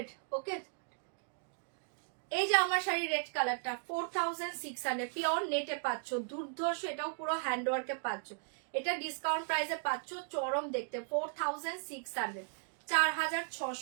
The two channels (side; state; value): left; silent; digital silence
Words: ओके। এই যে আমার শাড়ির রেড কালারটা 4,600, পিওর নেটে পাচ্ছ, দুর্ধর্ষ, এটাও পুরো হ্যান্ডওয়ার্কে পাচ্ছ। এটা ডিসকাউন্ট প্রাইসে পাচ্ছ, চরম দেখতে, 4,600,